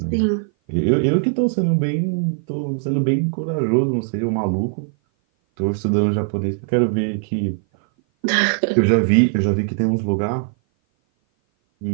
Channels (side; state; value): left; silent; 57 dB below the other